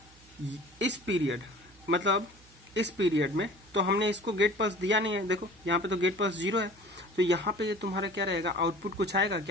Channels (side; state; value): right; noise; hum, 26 dB below the sound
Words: इस पीरियड मतलब इस पीरियड में तो हमने इसको गेट पल्स दिया नहीं है, देखो यहाँ पे तो गेट पल्स 0 है, तो यहाँ पे ये तुम्हारा क्या रहेगा, आउटपुट कुछ आएगा